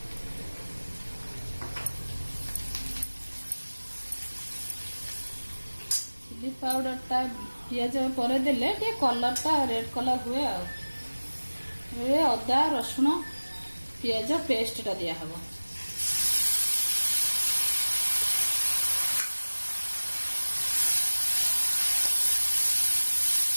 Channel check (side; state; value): both; inverted; correlation -1.00